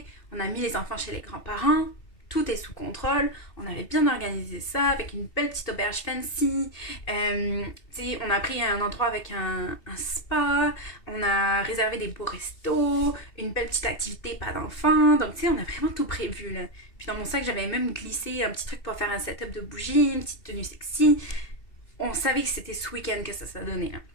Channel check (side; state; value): right; late; 2.7 ms